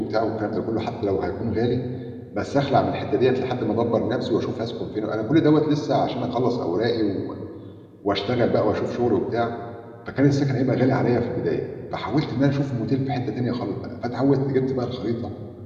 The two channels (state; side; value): identical; both; correlation 1.00